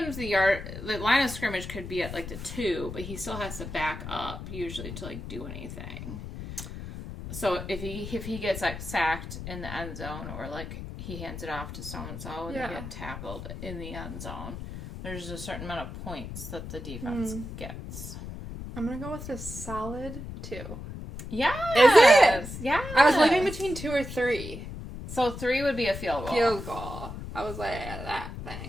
if the line of scrimmage could be at, like, the 2, but he still has to back up usually to, like, do anything. So if he gets, like, sacked in the end zone, or, like, he hands it off to so-and-so and they get tackled in the end zone, there's a certain amount of points that the defense gets. I'm going to go with a solid 2. Yeah. Is it? Yeah. I was living between 2 or 3. So 3 would be a field goal. I was like, that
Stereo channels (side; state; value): left; noise; rumble, 9 dB below the sound